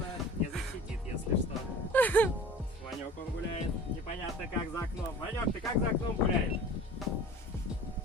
Не защитит, если что. Ванек, он гуляет. Непонятно, как за окном. Ванек, ты как за окном гуляешь?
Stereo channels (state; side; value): normal; both; correlation 0.42